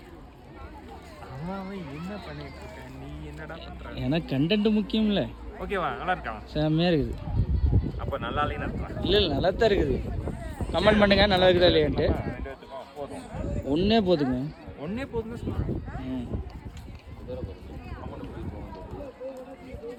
என்ன பண்ணிட்டு இருக்க நீ? என்னடா பண்ற? எனக்கு கண்டென்ட் முக்கியம் இல்லை. ஓகேவா? நல்லா இருக்கா? செம்மையா இருக்குது. அப்போ நல்லா இல்லைன்னு அர்த்தம். இல்லை நல்லா தான் இருக்குது. கமெண்ட் பண்ணுங்க நல்லா இருக்குதா இல்லையான்ட்டு. ஒன்றே போதுங்க. ஒன்றே போதுன்னு சொல்கிறேன்.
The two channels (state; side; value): identical; both; correlation 1.00